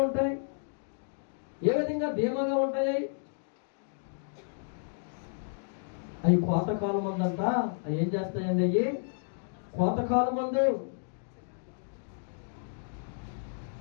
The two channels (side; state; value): right; silent; digital silence